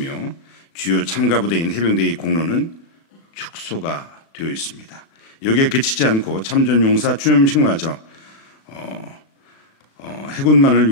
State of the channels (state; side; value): late; right; 36 ms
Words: 주요 참가부대인 해병대의 공로는 축소가 되어 있습니다. 여기에 그치지 않고 참전용사 추념식마저 해군만을